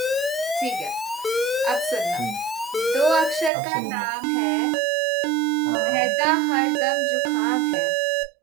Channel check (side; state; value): left; drops out; at 3.5 s